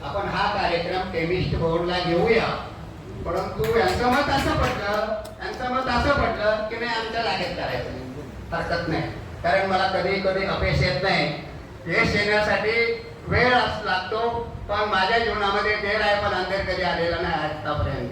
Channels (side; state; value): both; identical; correlation 1.00